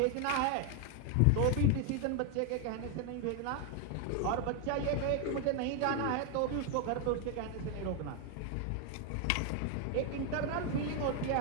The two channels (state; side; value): different; both; correlation 0.01